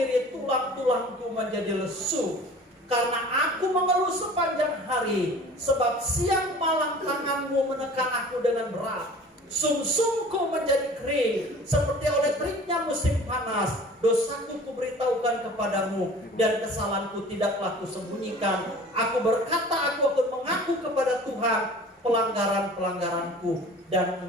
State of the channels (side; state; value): both; normal; correlation 0.44